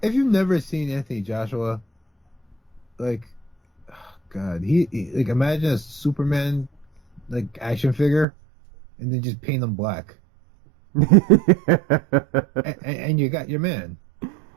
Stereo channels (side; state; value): left; drops out; at 8.2 s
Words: you've never seen Anthony Joshua, like, oh God, he like imagine a Superman like action figure, and then just paint him black, and you got your man.